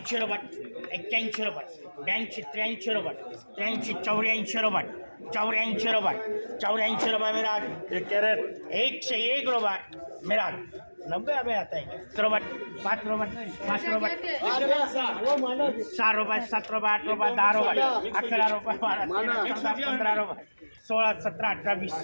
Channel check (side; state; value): both; inverted; correlation -1.00